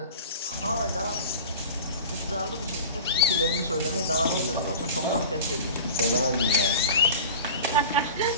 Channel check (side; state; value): both; inverted; correlation -0.36